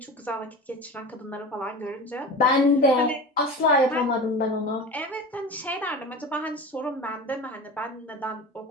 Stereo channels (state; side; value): normal; both; correlation 0.32